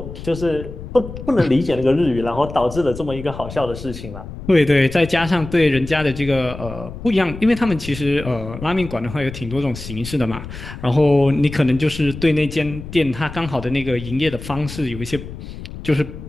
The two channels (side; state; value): left; noise; rumble, 11 dB below the sound